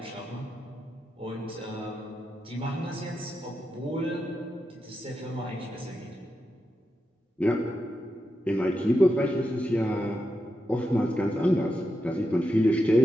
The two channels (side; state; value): both; normal; correlation 0.87